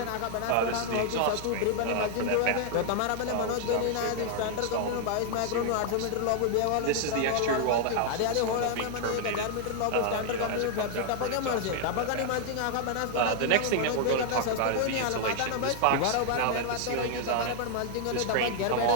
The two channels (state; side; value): different; both; correlation 0.00